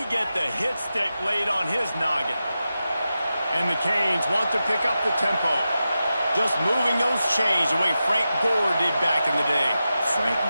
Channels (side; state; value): both; inverted; correlation -0.91